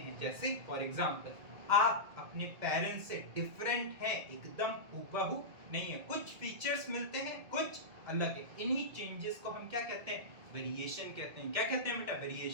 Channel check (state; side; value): late; left; 2.1 ms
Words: जैसे फॉर एग्जांपल, आप अपने पेरेंट्स से डिफरेंट हैं, एकदम हूबहू नहीं है, कुछ फीचर्स मिलते हैं, कुछ अलग है। इन्हीं चेंजेस को हम क्या कहते हैं, वेरिएशन कहते हैं। क्या कहते हैं बेटा,